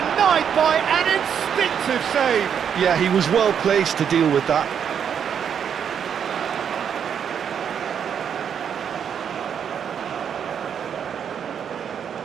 by an instinctive save. Yeah, he was well placed to deal with that.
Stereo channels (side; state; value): left; quieter; 7.9 dB